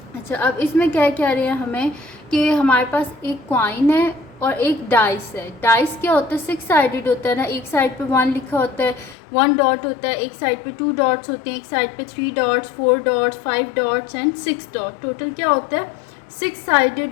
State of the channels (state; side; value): drops out; right; at 9.2 s